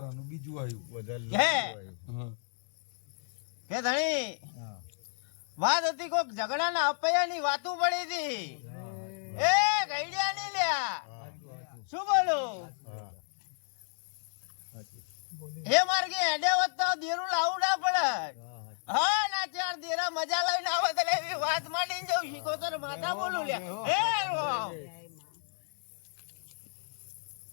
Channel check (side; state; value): right; silent; digital silence